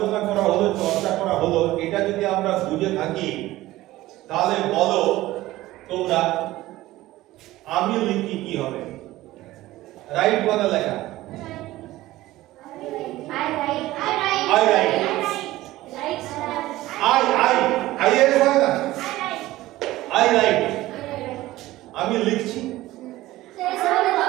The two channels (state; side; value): quieter; left; 16.8 dB